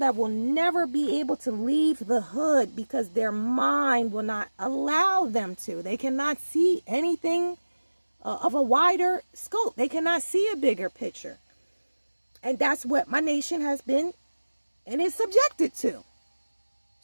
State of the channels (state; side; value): inverted; both; correlation -1.00